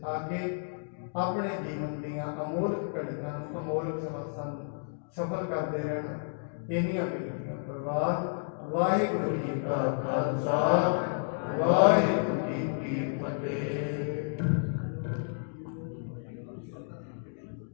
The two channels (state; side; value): silent; right; digital silence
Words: ਆ ਕੇ ਆਪਣੇ ਜੀਵਨ ਦੀਆਂ ਅਮੋਲਕ ਘੜੀਆਂ ਨੂੰ, ਅਮੋਲਕ ਸਮਾਸਾਂ ਨੂੰ ਸਫਲ ਕਰਦੇ ਰਹਿਣਾ। ਇੰਨੀਆਂ ਬੇਨਤੀਆਂ ਪ੍ਰਵਾਹ। ਵਾਹਿਗੁਰੂ ਜੀ ਕਾ ਖਾਲਸਾ, ਵਾਹਿਗੁਰੂ ਜੀ ਕੀ ਫਤਿਹ।